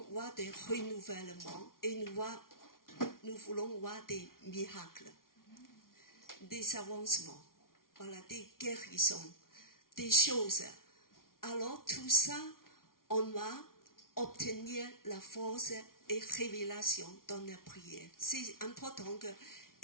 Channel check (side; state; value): right; late; 0.92 ms